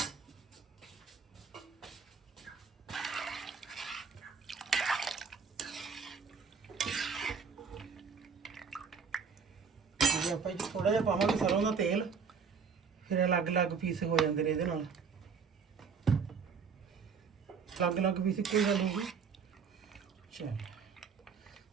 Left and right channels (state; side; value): quieter; left; 5.8 dB